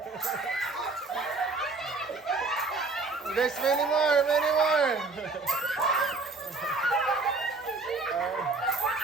There's many more.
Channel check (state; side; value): quieter; left; 3.8 dB